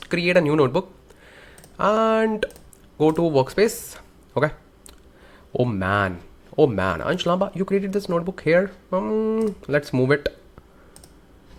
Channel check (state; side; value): identical; both; correlation 1.00